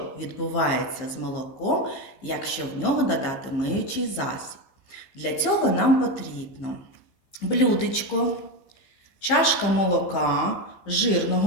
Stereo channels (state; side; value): late; right; 15 ms